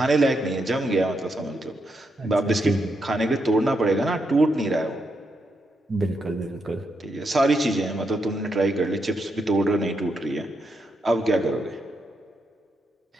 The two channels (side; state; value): both; normal; correlation 0.82